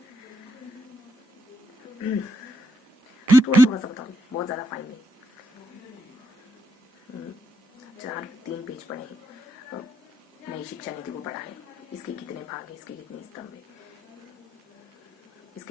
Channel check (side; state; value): both; normal; correlation 0.80